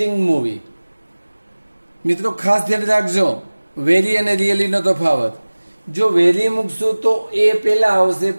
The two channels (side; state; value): both; inverted; correlation -1.00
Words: movie. મિત્રો ખાસ ધ્યાન રાખજો વેરી અને રિયલી નો તફાવત. જો વેરી મૂકશું તો એ પહેલા આવશે